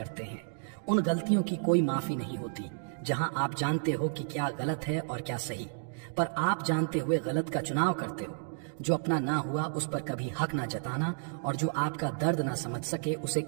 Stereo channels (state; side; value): silent; left; digital silence